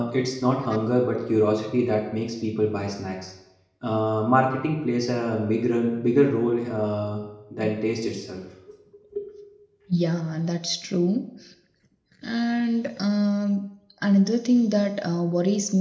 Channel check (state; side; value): identical; both; correlation 1.00